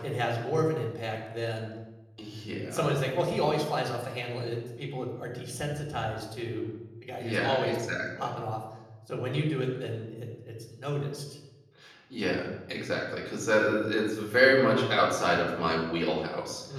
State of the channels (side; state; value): both; identical; correlation 1.00